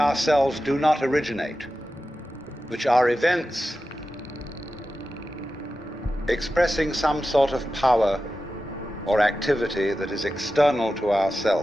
do not originate, which are events expressing some sort of power or activity that is external to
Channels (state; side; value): normal; both; correlation 0.93